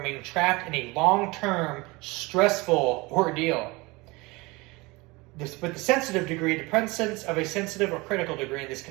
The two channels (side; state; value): left; quieter; 24.0 dB